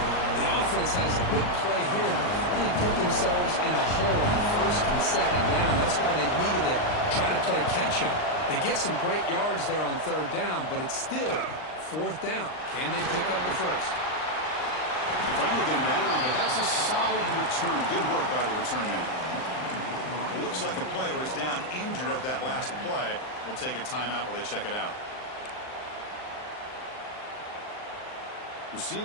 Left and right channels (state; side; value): late; right; 39 ms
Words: The offense has a big play here, but they really put themselves in a hole on 1st and 2nd down. That's why they've needed to try to play catch-up. They get some great yards there on 3rd down, but it's still 4th down. Can they pick up the first? They finally get him down, but that's a solid return. Good work by the return man. It looks like a player is down injured at that last play. We'll take a timeout while they check it out.